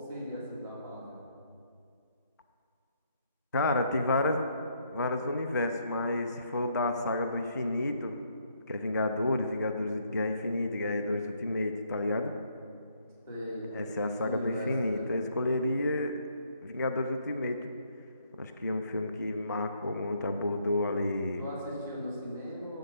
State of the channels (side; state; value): both; inverted; correlation -0.70